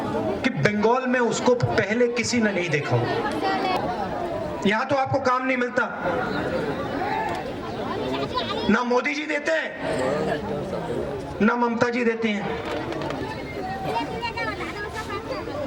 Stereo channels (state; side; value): identical; both; correlation 1.00